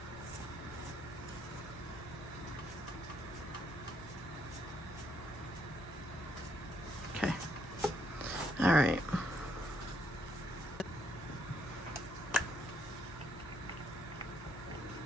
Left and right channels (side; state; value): both; normal; correlation 0.72